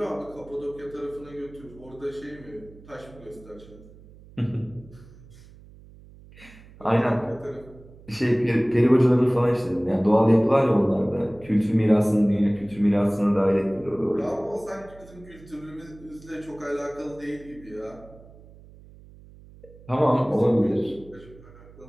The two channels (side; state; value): right; noise; hum, 22 dB below the sound